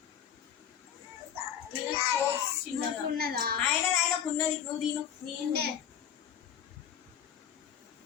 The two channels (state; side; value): quieter; right; 9.1 dB